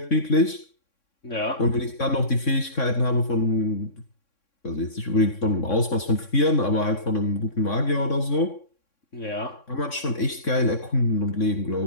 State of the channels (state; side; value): late; right; 3.6 ms